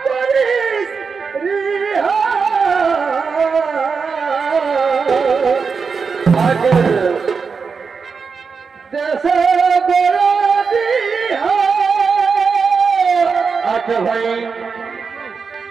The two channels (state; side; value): quieter; left; 5.3 dB